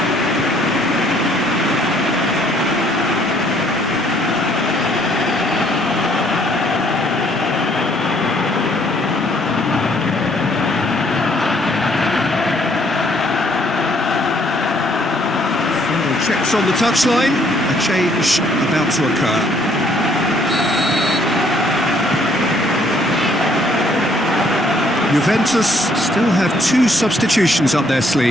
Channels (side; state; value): both; normal; correlation 0.65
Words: Checks on the touchline, a change about to occur. Juventus still have 2 substitutions up their